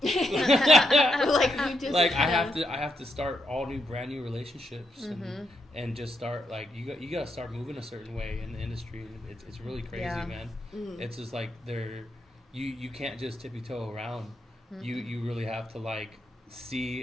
Like you just Like, I have to start all new, brand new relationships and just start, like, you got to start moving a certain way in the industry. And it's really crazy, Yeah. man. It's just like you can't just tippy toe around. You really have to, like, see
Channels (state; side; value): normal; both; correlation 0.80